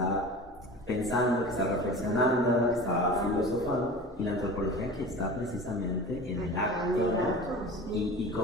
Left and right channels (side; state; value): both; normal; correlation 0.36